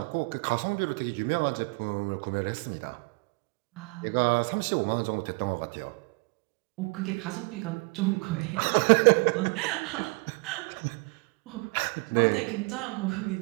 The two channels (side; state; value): left; quieter; 30.2 dB